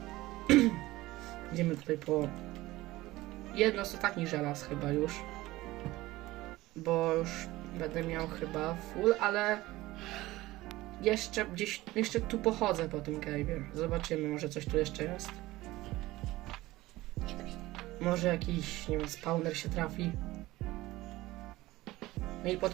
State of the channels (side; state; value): left; quieter; 18.2 dB